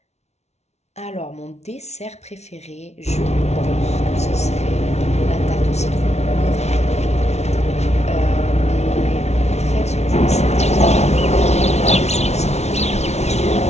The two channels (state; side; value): late; right; 0.32 ms